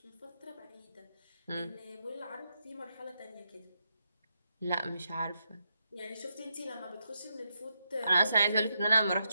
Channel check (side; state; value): both; inverted; correlation -0.83